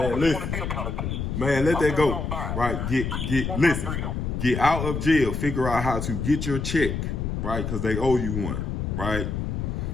don't listen. want to be a politician. Man, let that go. Right. Listen. Get out of jail. Figure out how to get your check, right? Because they owe you one, right?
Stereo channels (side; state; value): left; noise; rumble, 3 dB below the sound